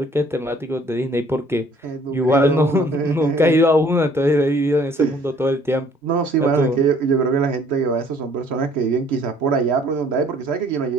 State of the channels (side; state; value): both; normal; correlation 0.58